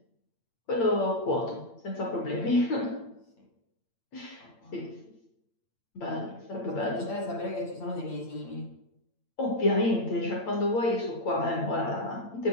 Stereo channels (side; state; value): right; late; 8.8 ms